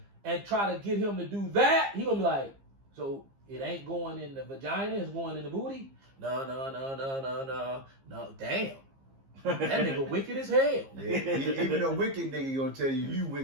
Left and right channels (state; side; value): late; left; 15 ms